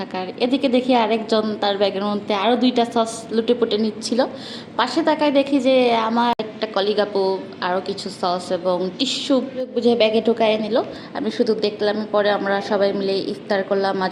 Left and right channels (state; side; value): identical; both; correlation 1.00